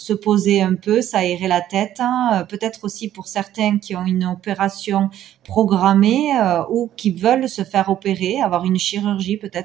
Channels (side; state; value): left; quieter; 12.0 dB